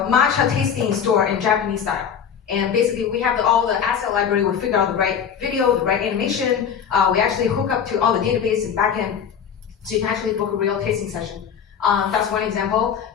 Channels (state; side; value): quieter; right; 7.6 dB